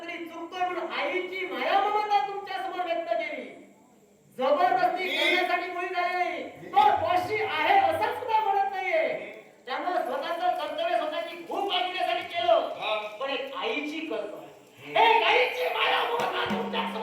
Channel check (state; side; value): identical; both; correlation 1.00